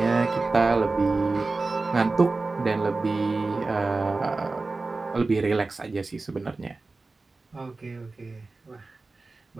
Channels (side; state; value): left; quieter; 3.6 dB